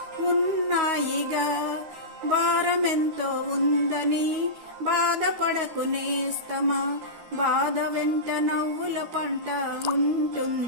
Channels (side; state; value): left; late; 13 ms